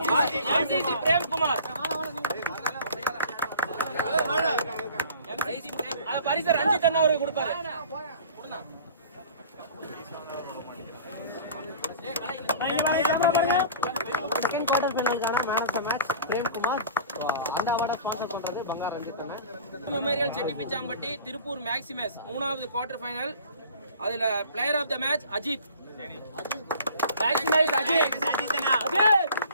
MCC Prem Kumar. MCC Prem அத பரிசு ரஞ்சித் அண்ணா அவருக்கு கொடுப்பாரு. செகண்ட் குவார்டர் ஃபைனலுக்கான man of the match Prem Kumar. அந்த அவார்டை ஸ்பான்சர் பண்றது பங்கார் ரஞ்சித் அண்ணா. மெமோரியல் செட்டிப்பிச்சாம்பட்டி திருப்பூர் மேக்ஸிமஸ் 3வது குவார்டர் ஃபைனல். அதுல player of the match Ajith. Maximus Ajith.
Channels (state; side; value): inverted; both; correlation -0.45